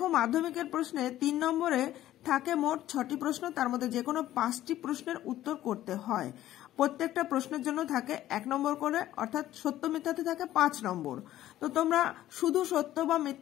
মাধ্যমিকের প্রশ্নে 3 নম্বরে থাকে মোট 6টি প্রশ্ন, তার মধ্যে যে কোনো 5টি প্রশ্নের উত্তর করতে হয়। প্রত্যেকটা প্রশ্নের জন্য থাকে 1 নম্বর করে, অর্থাৎ সত্য মিথ্যাতে থাকে 5 নম্বর। তো তোমরা শুধু সত্য বা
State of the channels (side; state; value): right; quieter; 13.6 dB